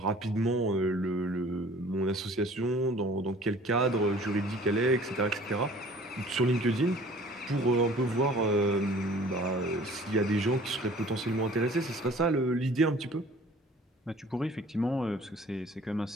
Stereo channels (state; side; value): normal; both; correlation 0.50